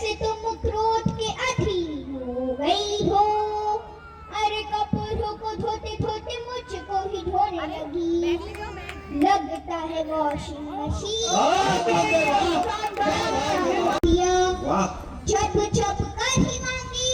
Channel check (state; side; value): identical; both; correlation 1.00